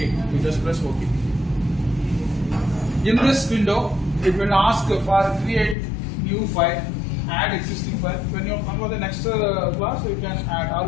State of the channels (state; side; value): drops out; right; at 5.8 s